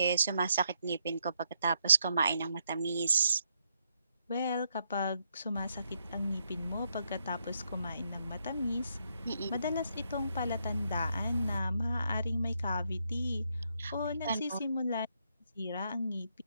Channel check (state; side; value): inverted; both; correlation -0.77